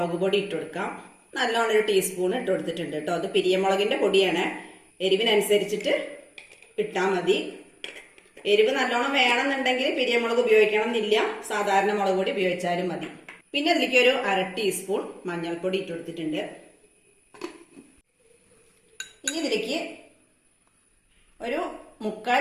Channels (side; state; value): both; identical; correlation 1.00